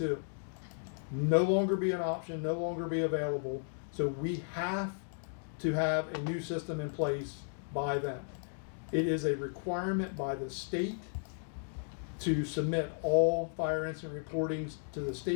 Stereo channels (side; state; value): right; silent; digital silence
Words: No longer be an option, no longer be available. So we have to have a new system in place by then. It is a requirement by the state to submit all fire incident reportings to the